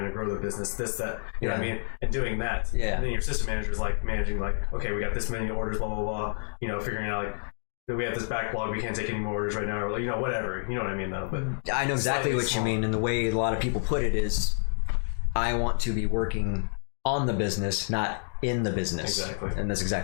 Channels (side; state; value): right; silent; 59 dB below the other